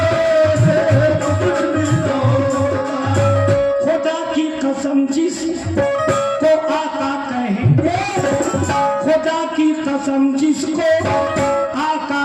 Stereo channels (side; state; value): both; identical; correlation 1.00